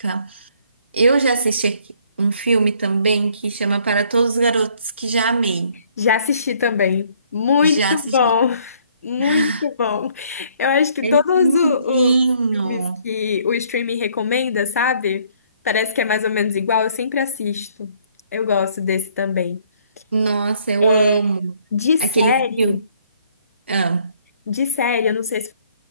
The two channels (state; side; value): inverted; both; correlation -0.64